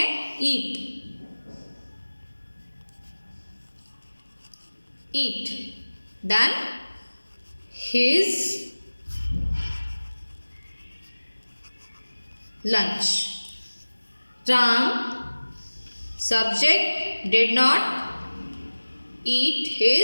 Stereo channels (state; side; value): inverted; both; correlation -1.00